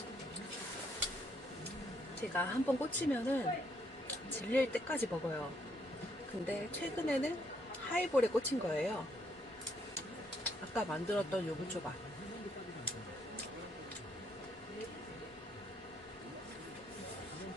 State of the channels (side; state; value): both; normal; correlation 0.71